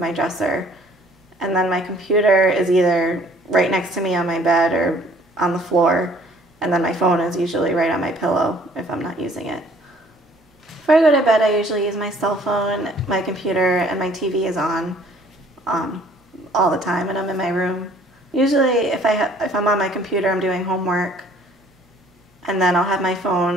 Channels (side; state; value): both; normal; correlation 0.56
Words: dresser, and then my computer is either right next to me on my bed or on the floor, and then my phone is usually right on my pillow if I'm not using it. Before I go to bed, I usually use my cell phone, my computer, and my TV is on all the time, and I'm in my room. Usually, if I'm on my computer, I'm doing homework, and then I'll have my